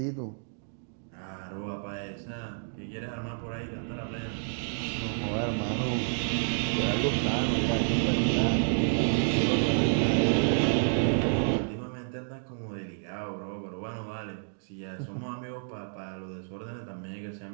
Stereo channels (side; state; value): left; silent; digital silence